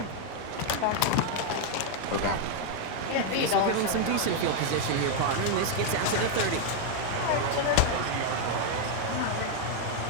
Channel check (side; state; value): both; different; correlation 0.00